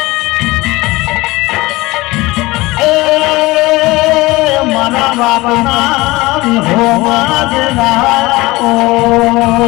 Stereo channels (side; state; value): right; quieter; 20.9 dB